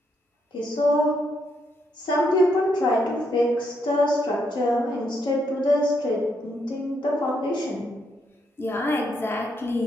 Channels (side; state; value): both; normal; correlation 0.77